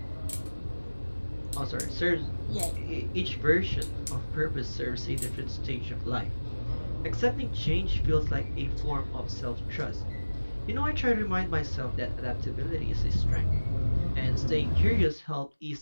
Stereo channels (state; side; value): inverted; both; correlation -1.00